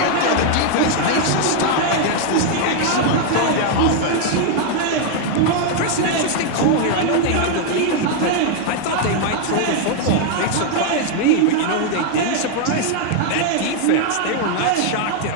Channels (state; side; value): different; both; correlation 0.00